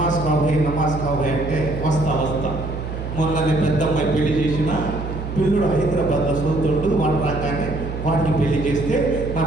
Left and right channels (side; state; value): right; noise; hum, 7 dB below the sound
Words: కావు, భయ్ నమాజ్ కావు అంటే వస్తా. మొన్ననే పెద్దమ్మాయి పెళ్లి చేసిన పిల్లుడు హైదరాబాద్లో సోతుండు, వాడు రాగానే వాడికి పెళ్లి చేస్తే నా